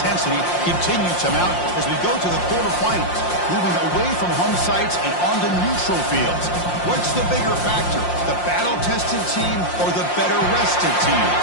continue to mount as we go to the quarterfinals, moving away from home sites and onto neutral fields. What's the bigger factor, the battle-tested team or the better-rested team?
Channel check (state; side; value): late; right; 5.7 ms